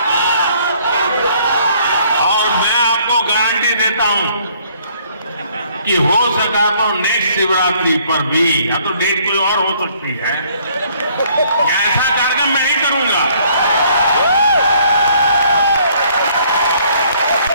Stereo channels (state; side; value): inverted; both; correlation -0.63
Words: गारंटी देता हूं कि हो सका तो नेक्स्ट शिवरात्रि पर भी, या तो डेट कोई और हो सकती है, ऐसा कार्यक्रम मैं नहीं करूंगा।